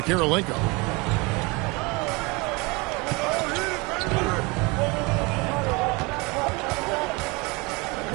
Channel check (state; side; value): quieter; left; 26.6 dB